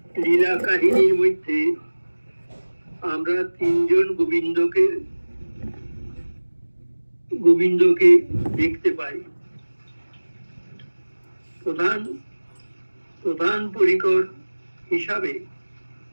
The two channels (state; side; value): inverted; both; correlation -1.00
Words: লীলা কাহিনীর মধ্যে আমরা তিনজন গোবিন্দকে দেখতে পাই। প্রধান পরিকর হিসাবে